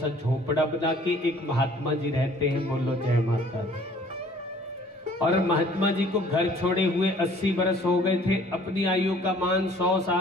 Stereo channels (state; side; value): normal; both; correlation 0.54